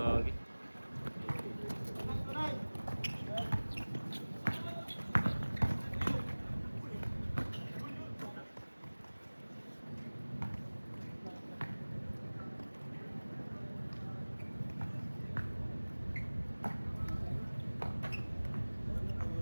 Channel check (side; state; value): both; inverted; correlation -1.00